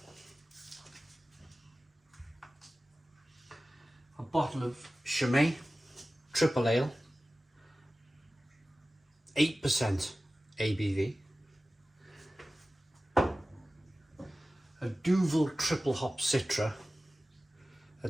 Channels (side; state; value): both; normal; correlation 0.96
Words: A bottle of Chimay, Tripel Ale, 8% ABV. A Duvel triple hop Citra